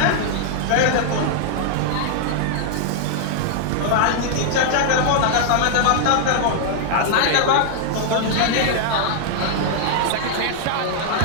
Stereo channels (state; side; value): different; both; correlation -0.01